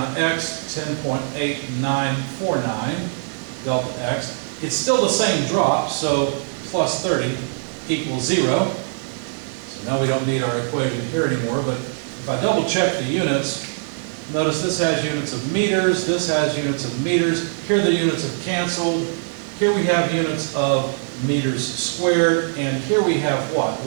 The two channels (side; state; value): left; silent; digital silence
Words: x, 10.8949 delta x. It's still the same drop, so plus 30 equals 0. So now we don't need our equation here anymore, but if I double check the units, notice this has units of meters, this has units of meters. Here the units have canceled. Here we have units of meters squared, and here we have what?